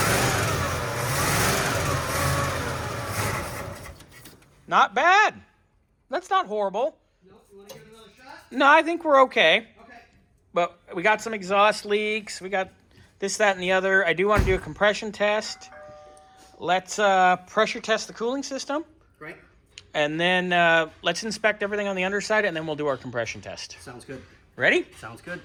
Not bad. That's not horrible. No, you want to give it another shot? No, I think we're okay. Okay. But we got some exhaust leaks. We got this, that, and the other. I do want to do a compression test. Let's pressure test the cooling system. Great. And then let's inspect everything on the underside, and then we'll do our compression test. Sounds good. Ready? Sounds good.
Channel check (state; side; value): identical; both; correlation 1.00